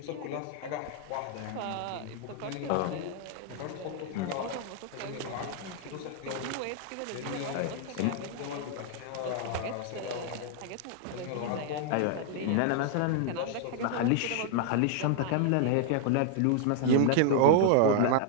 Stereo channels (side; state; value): both; different; correlation 0.00